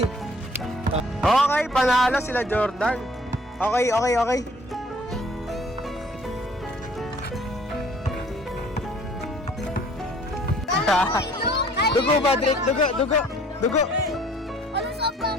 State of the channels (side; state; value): both; normal; correlation 0.56